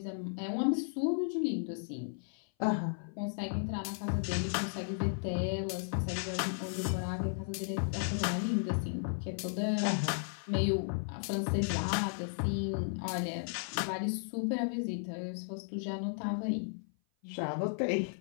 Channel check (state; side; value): silent; right; 55 dB below the other